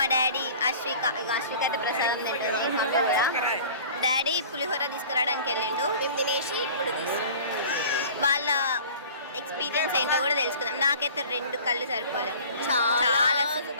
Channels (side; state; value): both; inverted; correlation -0.44